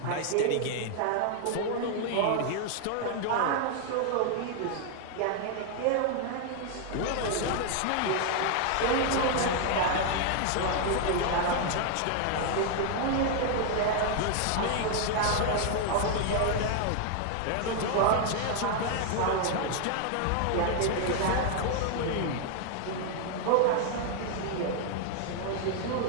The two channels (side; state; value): both; different; correlation 0.00